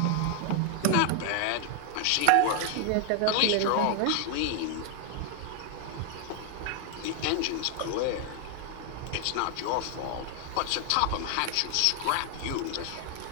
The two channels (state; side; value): different; both; correlation 0.01